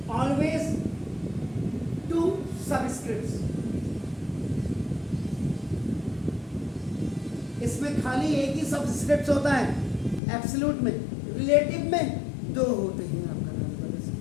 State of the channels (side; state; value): right; drops out; at 10.2 s